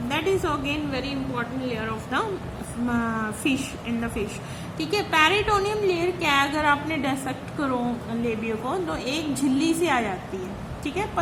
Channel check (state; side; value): identical; both; correlation 1.00